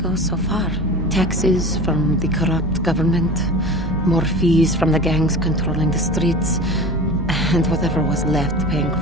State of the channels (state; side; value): normal; both; correlation 0.34